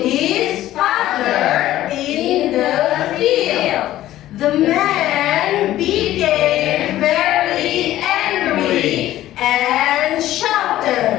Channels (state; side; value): quieter; right; 14.1 dB